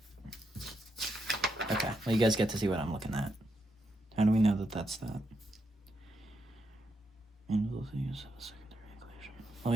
Okay, well, you guys get to see what I'm looking at. How do we know that that's that? Well,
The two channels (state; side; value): normal; both; correlation 0.81